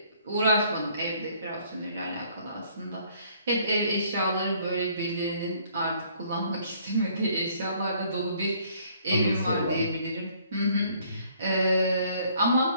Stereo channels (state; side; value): inverted; both; correlation -0.62